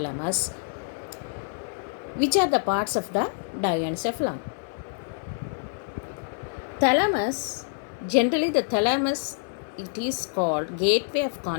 which are the parts of the diencephalon. Thalamus, generally the thalamus, it is called gateway of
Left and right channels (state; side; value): silent; right; digital silence